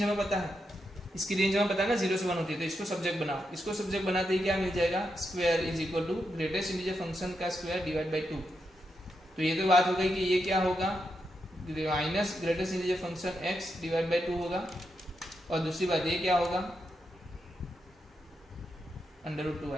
हमें पता है, ना 0 से 1 होती है, तो इसको सब्जेक्ट बनाओ, इसको सब्जेक्ट बनाते ही क्या मिल जाएगा, square is equal to greatest integer function का स्क्वायर डिवाइड बाई 2। तो ये तो बात हो गई कि ये क्या होगा, minus greatest integer function x divide by 2 होगा, और दूसरी बात ये क्या होगा, √2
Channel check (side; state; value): both; normal; correlation 0.84